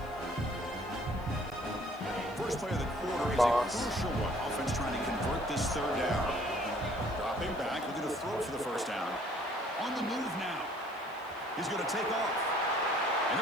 First play of the quarter is a crucial one. Offense trying to convert this third down. Dropping back, looking to throw for the first down. On the move now. He's going to take off. And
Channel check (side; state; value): left; noise; hiss, 26 dB below the sound